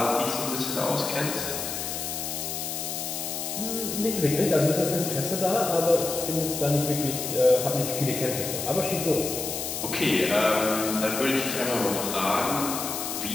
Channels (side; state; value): left; noise; hiss, 4 dB below the sound